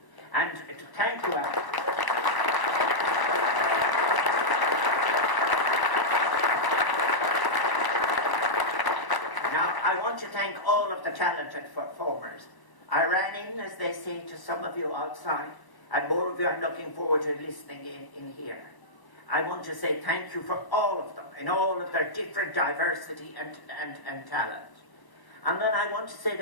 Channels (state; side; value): late; right; 1.0 ms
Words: And to thank you, Alan. I want to thank all of the talented performers. I ran in, as they say, to some of you outside, and more of you are looking forward to listening in here. I want to say thank you for all of them, in all of their different diversity and talent. And then I want to say